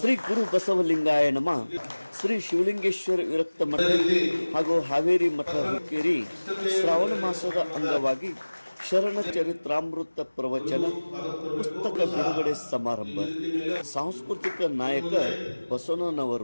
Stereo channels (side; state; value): both; inverted; correlation -1.00